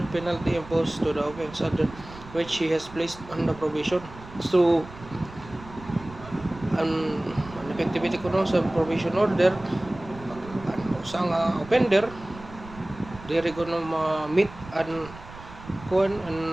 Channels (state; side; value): noise; right; rumble, 17 dB below the sound